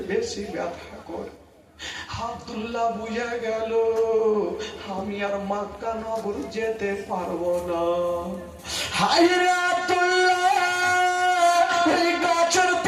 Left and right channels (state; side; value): identical; both; correlation 1.00